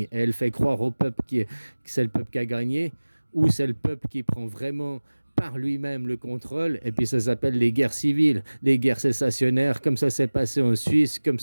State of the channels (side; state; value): both; inverted; correlation -1.00